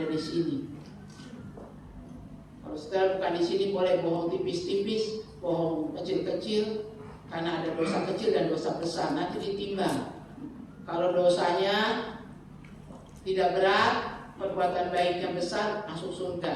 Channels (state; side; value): identical; both; correlation 1.00